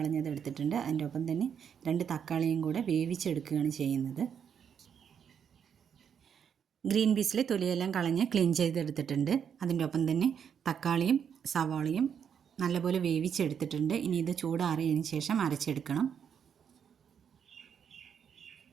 എടുത്തിട്ടുണ്ട്. അതിൻ്റെ ഒപ്പം തന്നെ 2 തക്കാളിയും കൂടെ വേവിച്ചെടുക്കുകയാണ് ചെയ്യുന്നത്. ഗ്രീൻ പീസിലെ തൊലിയെല്ലാം കളഞ്ഞ് ക്ലീൻ ചെയ്തെടുത്തിട്ടുണ്ട്. അതിൻ്റെ ഒപ്പം തന്നെ തക്കാളിയും സവാളയും നല്ലപോലെ വേവിച്ചെടുത്തിട്ടുണ്ട്. ഇനി ഇത് ചൂടാറിയതിന് ശേഷം അരച്ചെടുക്കണം.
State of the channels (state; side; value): quieter; left; 7.8 dB